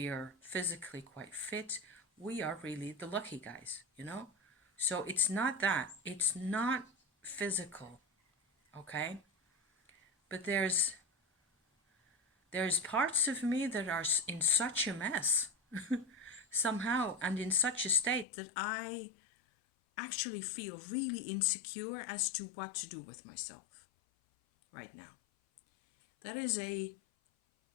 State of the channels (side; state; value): right; drops out; at 18.2 s